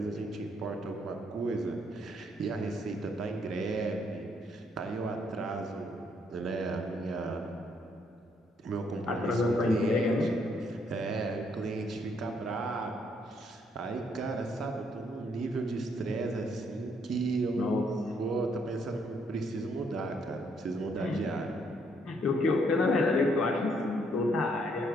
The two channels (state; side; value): normal; both; correlation 0.71